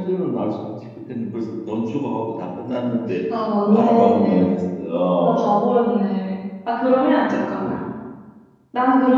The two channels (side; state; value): both; identical; correlation 1.00